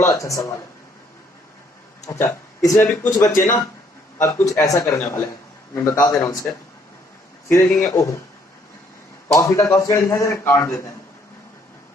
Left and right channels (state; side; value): normal; both; correlation 0.66